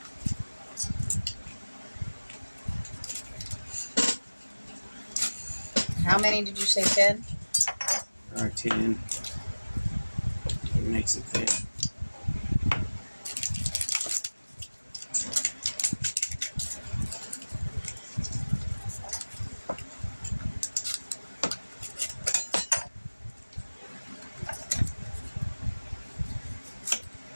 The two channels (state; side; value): inverted; both; correlation -1.00